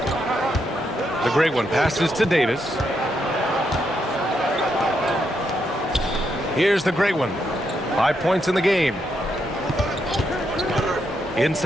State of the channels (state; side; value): normal; both; correlation 0.80